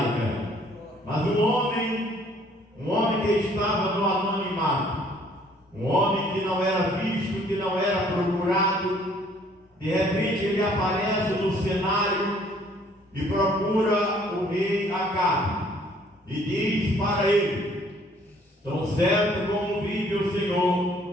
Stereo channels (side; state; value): both; normal; correlation 0.60